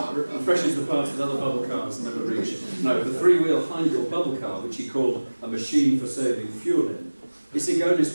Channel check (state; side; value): inverted; both; correlation -1.00